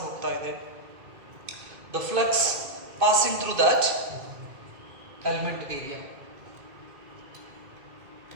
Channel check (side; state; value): left; late; 2.5 ms